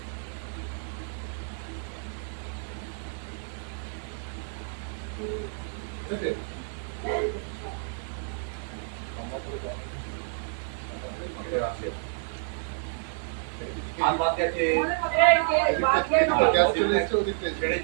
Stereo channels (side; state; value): left; silent; digital silence